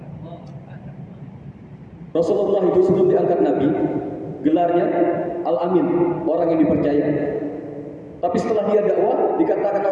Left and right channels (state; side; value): identical; both; correlation 1.00